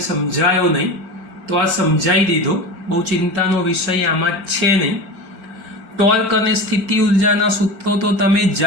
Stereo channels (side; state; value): left; late; 4.5 ms